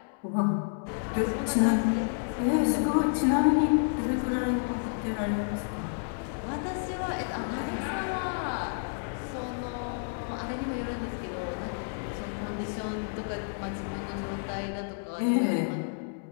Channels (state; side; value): silent; right; digital silence